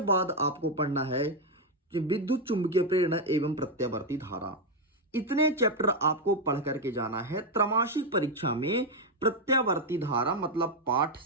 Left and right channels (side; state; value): both; normal; correlation 0.03